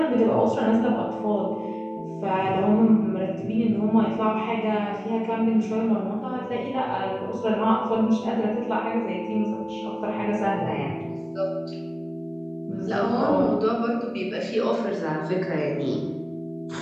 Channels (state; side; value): identical; both; correlation 1.00